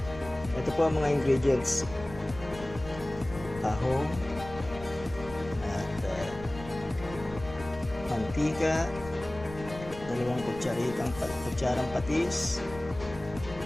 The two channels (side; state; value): left; noise; rumble, 14 dB below the sound